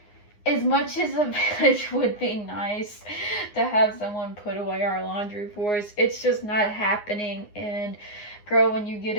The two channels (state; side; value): late; right; 9.6 ms